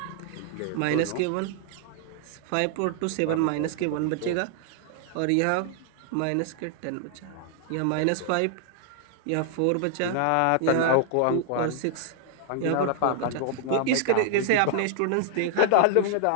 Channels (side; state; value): both; different; correlation 0.00